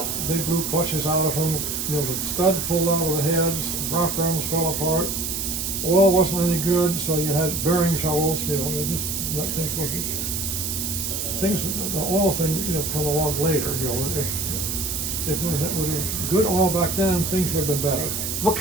They blew clutches out of them. The stud pulled out of the heads. Rock arms fell apart. Oil wasn't any good, so you had bearing troubles. The oil thing, come along later. If we had good oil back then, things would have been better. What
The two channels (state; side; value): noise; right; hiss, 2 dB below the sound